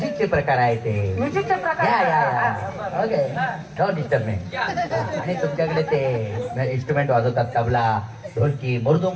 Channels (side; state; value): both; identical; correlation 1.00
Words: प्रकार आहे ते म्युझिकचे प्रकार ओके डोंट डिस्टर्ब मी आणि तुमच्याकडे ते इन्स्ट्रुमेंट वाजवतात तबला ढोलकी